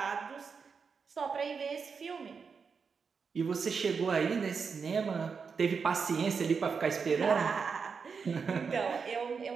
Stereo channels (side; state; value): left; quieter; 5.6 dB